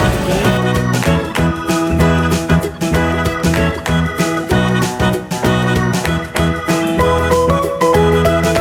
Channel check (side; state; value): both; identical; correlation 1.00